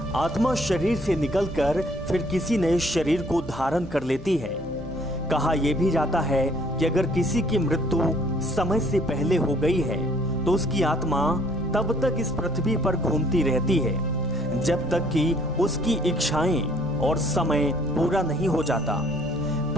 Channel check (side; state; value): both; normal; correlation 0.61